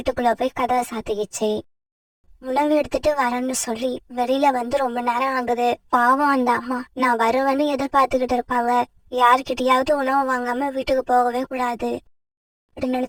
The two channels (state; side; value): identical; both; correlation 1.00